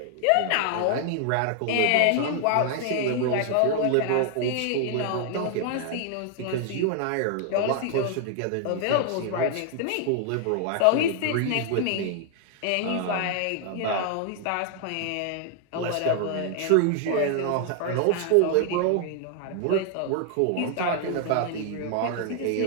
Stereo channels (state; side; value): different; both; correlation 0.00